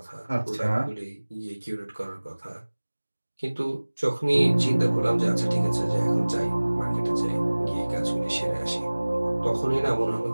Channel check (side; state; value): both; inverted; correlation -1.00